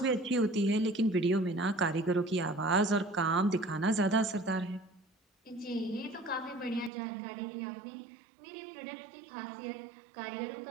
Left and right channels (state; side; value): drops out; left; at 6.9 s